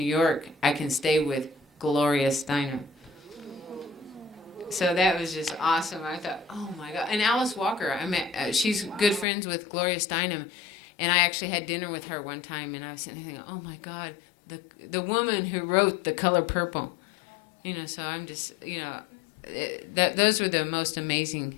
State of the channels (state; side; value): drops out; right; at 9.2 s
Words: York, I can stay with Gloria Steinem. So that was just awesome. I thought, oh my God. And Alice Walker, I met. She's good friends with Gloria Steinem, and I actually had dinner with her one time. And I was sitting there thinking, oh my God, the woman who wrote The Color Purple. You know, so I'm just, you know, those were the most